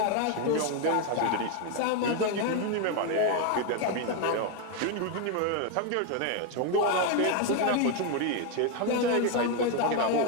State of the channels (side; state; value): both; different; correlation 0.01